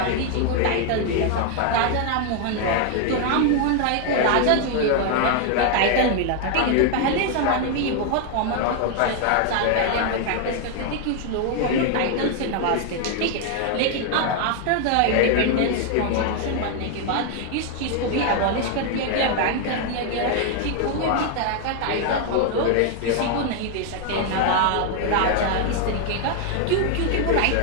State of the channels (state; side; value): different; both; correlation 0.00